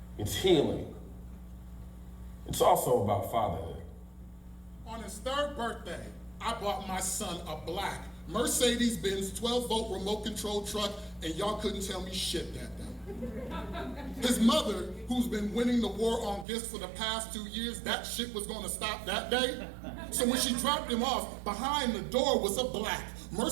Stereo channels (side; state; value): left; drops out; at 16.4 s